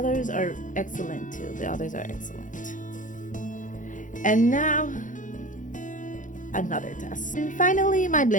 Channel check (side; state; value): right; late; 0.37 ms